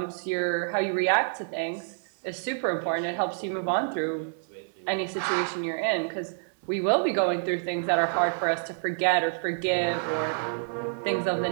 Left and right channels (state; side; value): silent; left; 59 dB below the other